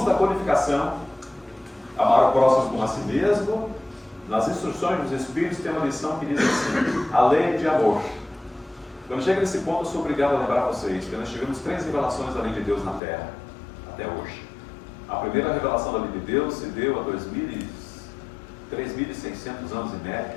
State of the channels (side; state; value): right; drops out; at 13.0 s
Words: da Codificação, amar o próximo como a si mesmo, nas instruções dos Espíritos tem uma lição que diz assim: a lei de amor. Quando chega nesse ponto, eu sou obrigado a lembrar vocês que nós tivemos 3 revelações da lei de Deus na Terra, até hoje. A primeira revelação da lei de Deus se deu há 3.600 anos e médio,